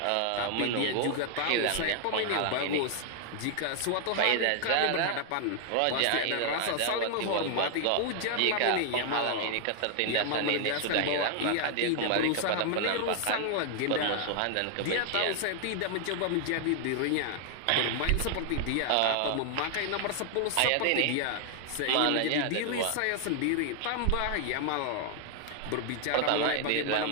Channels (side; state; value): both; different; correlation 0.00